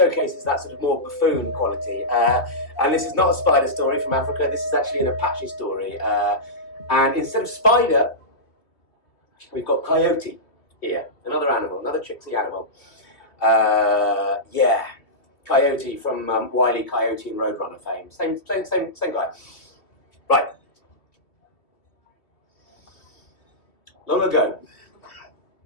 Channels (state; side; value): late; right; 2.6 ms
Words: that sort of more buffoon quality. And this is not a spider story from Africa. This is actually an Apache story. And instead of spider, we've got coyote here, another animal, another tricksy animal. Yeah, Coyote from Wile E. Coyote and Roadrunner fame. Same guy. Right. Long ago,